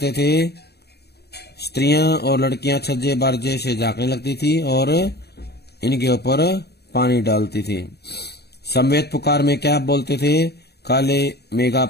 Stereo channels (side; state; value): right; late; 0.48 ms